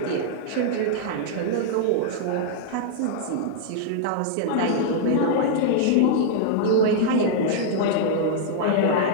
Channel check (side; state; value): both; different; correlation -0.01